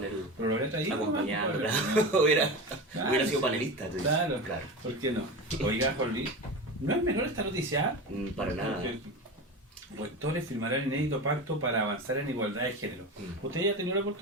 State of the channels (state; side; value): normal; both; correlation 0.26